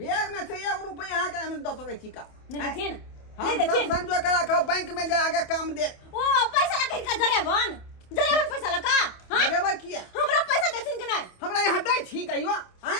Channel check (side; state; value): right; late; 28 ms